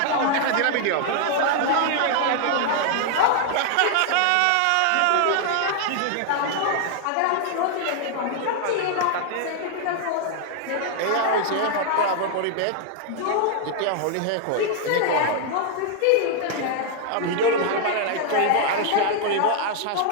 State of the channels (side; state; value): both; different; correlation 0.00